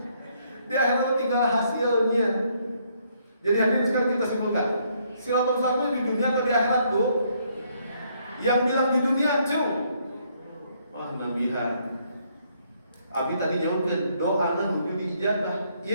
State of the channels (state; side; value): inverted; both; correlation -0.70